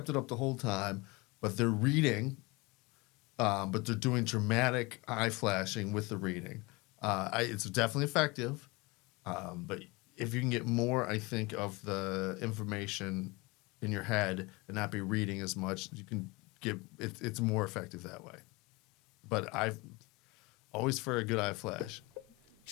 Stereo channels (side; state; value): right; quieter; 24.8 dB